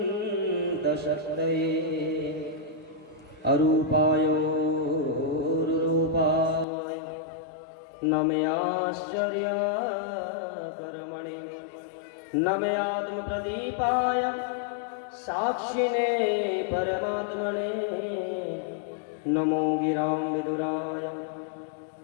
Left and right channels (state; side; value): drops out; right; at 6.7 s